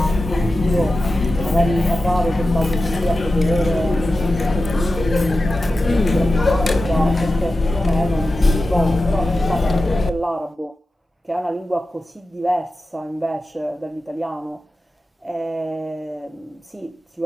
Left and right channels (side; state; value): both; normal; correlation 0.93